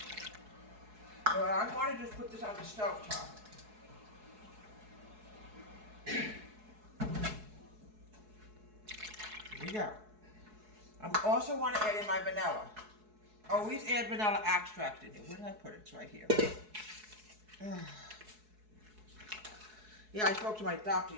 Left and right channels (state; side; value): late; left; 4.7 ms